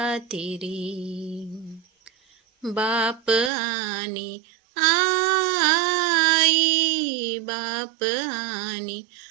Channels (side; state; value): left; drops out; at 3.5 s